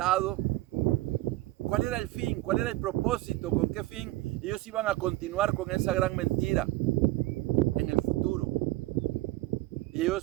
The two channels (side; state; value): left; quieter; 18.1 dB